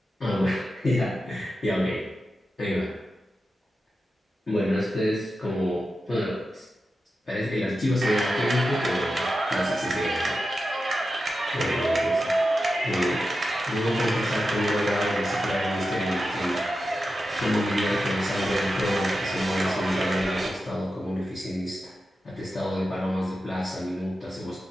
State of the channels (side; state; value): both; normal; correlation 0.91